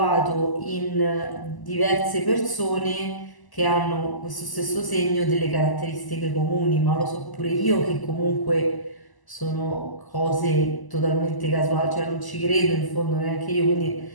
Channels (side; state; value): right; late; 1.0 ms